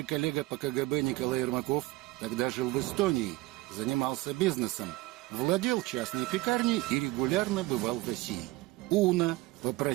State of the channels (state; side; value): quieter; left; 20.3 dB